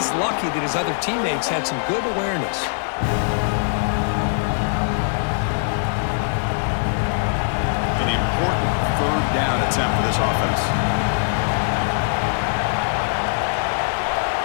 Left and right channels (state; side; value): silent; right; digital silence